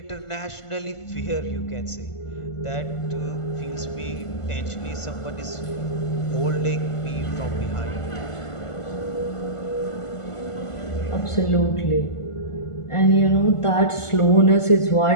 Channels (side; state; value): right; late; 1.5 ms